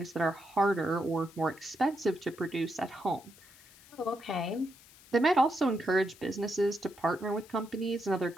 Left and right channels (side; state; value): left; noise; hiss, 23 dB below the sound